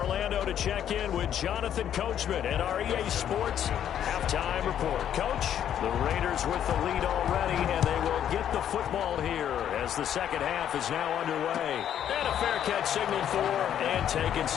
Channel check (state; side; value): quieter; right; 10.0 dB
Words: to check in with Jonathan Coachman at our EA Sports Halftime Report. Coach, the Raiders with the lead already, and they will get the football here as the second half is now underway. And a fair catch signaled for and taken